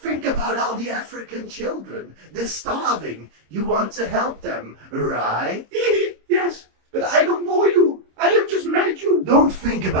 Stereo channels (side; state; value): left; late; 26 ms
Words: African children. They're starving. You want to help them, right? Yes, but I don't know you. I have just met you. Don't think